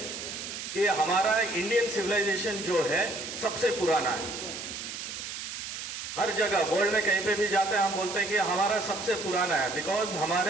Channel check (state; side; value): noise; right; hiss, 7 dB below the sound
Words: कि हमारा इंडियन सिविलाइजेशन जो है सबसे पुराना है। हर जगह वर्ल्ड में कहीं पे भी जाते हैं हम बोलते हैं कि हमारा सबसे पुराना है, बिकॉज